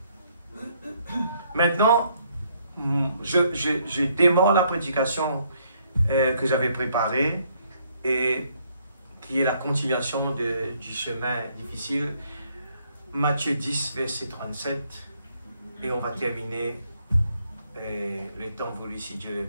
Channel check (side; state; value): both; inverted; correlation -0.69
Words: Maintenant, je démarre la prédication que j'avais préparée et qui est la continuation du chemin difficile. Matthieu 10, verset 37. Et on va terminer le temps voulu si Dieu le